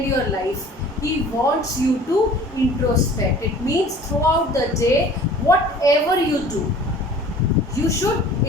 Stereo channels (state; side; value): normal; both; correlation 0.47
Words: your life. He wants you to introspect. It means throughout the day, whatever you do, you should